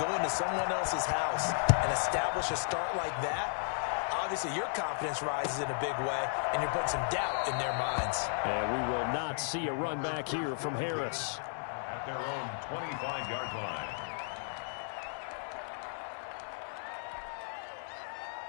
into someone else's house and establish a start like that, obviously your confidence rises in a big way, and you're putting some doubt in their minds. And we will not see a run back here from Harris. At their own 25-yard line.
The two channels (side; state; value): right; silent; 55 dB below the other